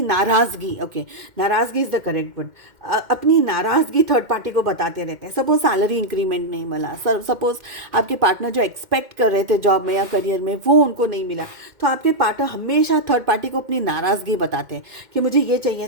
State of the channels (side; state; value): left; late; 2.1 ms